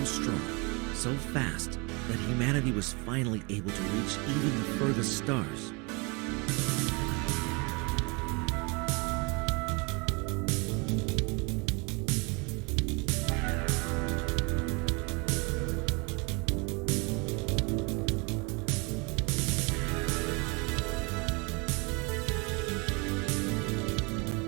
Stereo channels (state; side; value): quieter; left; 29.7 dB